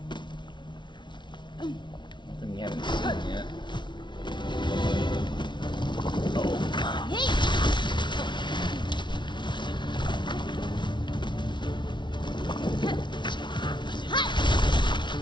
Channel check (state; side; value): late; right; 0.23 ms